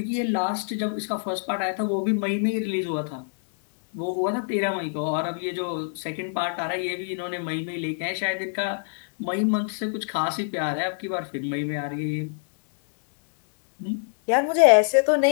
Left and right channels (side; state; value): right; silent; 61 dB below the other